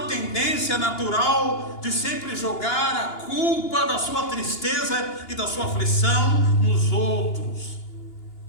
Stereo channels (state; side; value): late; right; 2.9 ms